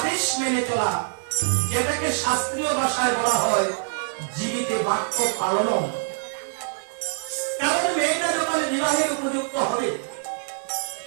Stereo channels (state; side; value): silent; left; 62 dB below the other